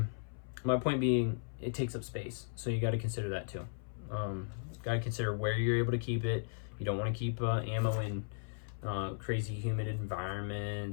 my point being, it takes up space, so you got to consider that too. Got to consider where you're able to keep it. You don't want to keep ammo in crazy humid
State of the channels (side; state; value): right; silent; 54 dB below the other